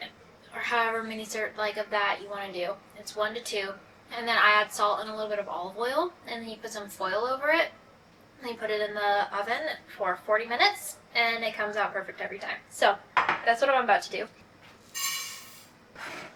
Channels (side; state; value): both; identical; correlation 1.00